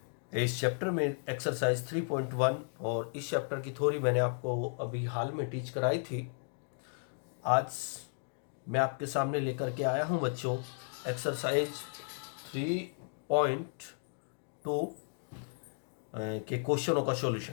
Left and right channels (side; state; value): right; silent; 55 dB below the other